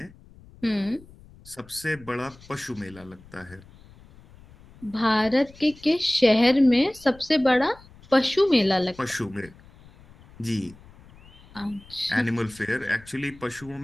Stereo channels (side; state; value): left; noise; rumble, 23 dB below the sound